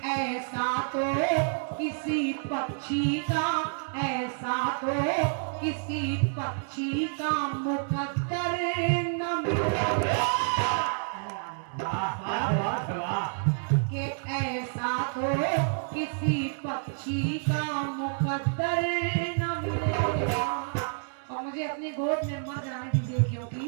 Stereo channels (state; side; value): silent; left; digital silence